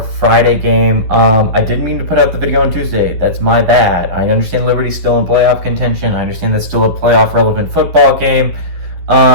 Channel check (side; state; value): left; late; 11 ms